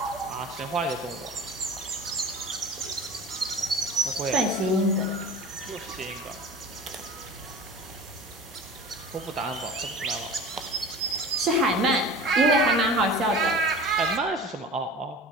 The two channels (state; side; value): normal; both; correlation 0.37